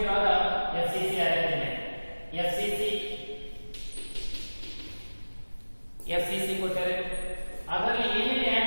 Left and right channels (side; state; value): both; inverted; correlation -1.00